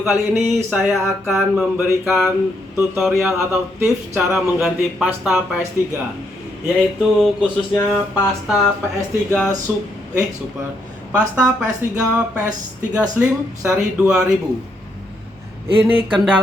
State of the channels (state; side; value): normal; both; correlation 0.76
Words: kali ini saya akan memberikan tutorial atau tips cara mengganti pasta PS3, yaitu khususnya pasta PS3 Super, pasta PS3 Slim seri 2000. Ini